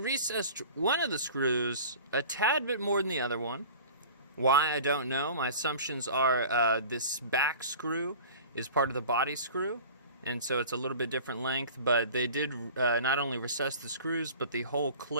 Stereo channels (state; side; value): inverted; both; correlation -0.41